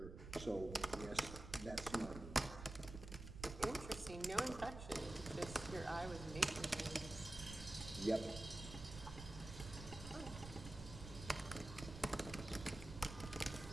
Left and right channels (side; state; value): right; noise; rumble, 10 dB below the sound